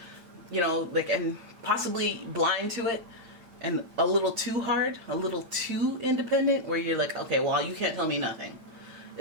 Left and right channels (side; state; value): left; late; 8.9 ms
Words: like, and possibly blind to it, and a little too hard, a little too independent, where you're like, okay, well, you can't tell me nothing?